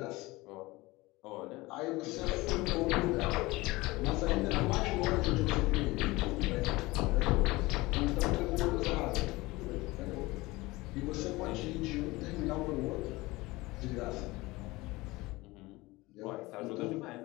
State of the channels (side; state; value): right; quieter; 21.2 dB